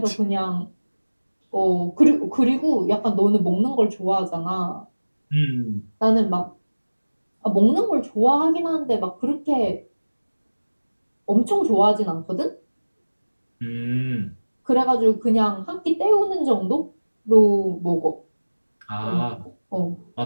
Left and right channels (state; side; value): inverted; both; correlation -1.00